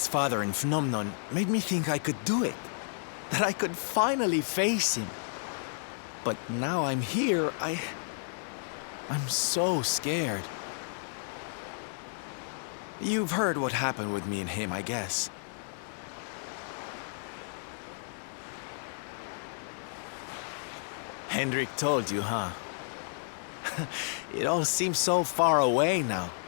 father in Phnomnon made me think I could do it. That I could finally face him. But now I'm here, I'm so scared. You've heard what happened with me and him, I guess. Hendrik told you, huh? It all seems so far away now.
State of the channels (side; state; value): right; silent; digital silence